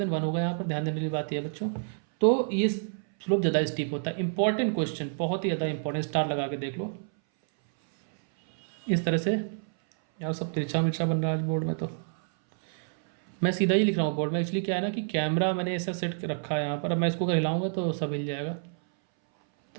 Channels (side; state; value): left; silent; 59 dB below the other